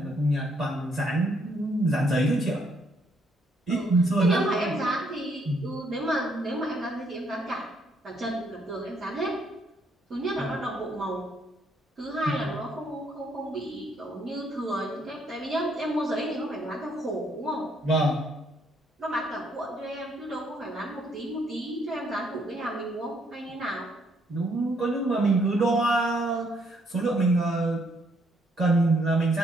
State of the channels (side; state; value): both; normal; correlation 0.71